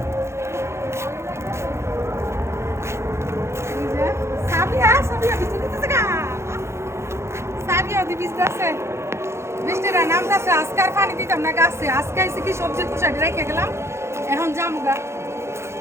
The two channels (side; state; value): left; late; 0.13 ms